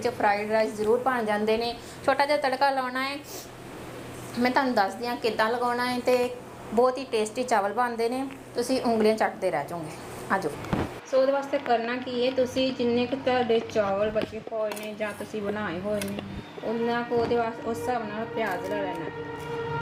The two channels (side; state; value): both; identical; correlation 1.00